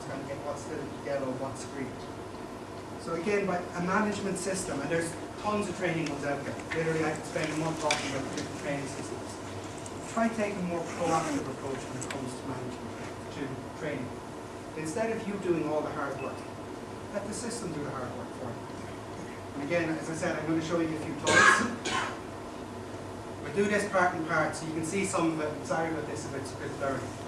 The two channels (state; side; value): identical; both; correlation 1.00